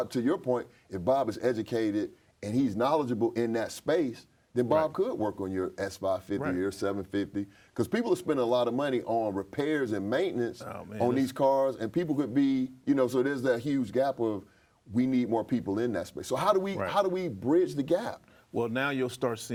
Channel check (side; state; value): both; identical; correlation 1.00